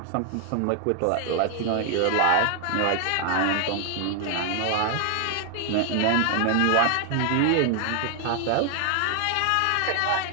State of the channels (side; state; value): both; different; correlation 0.00